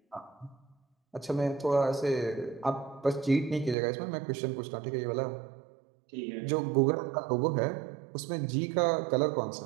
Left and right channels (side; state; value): left; drops out; at 3.8 s